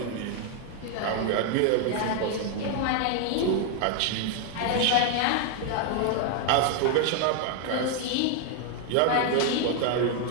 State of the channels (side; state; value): both; different; correlation 0.00